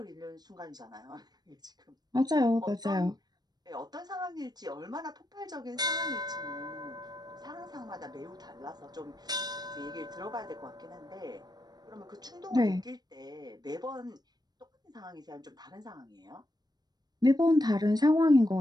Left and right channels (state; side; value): late; left; 0.19 ms